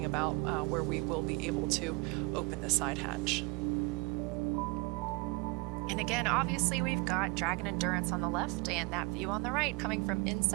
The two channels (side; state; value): left; quieter; 26.7 dB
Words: about, where we will be able to open the side hatch. And again, obviously we've got Dragon Endurance on the left and that view on the right coming from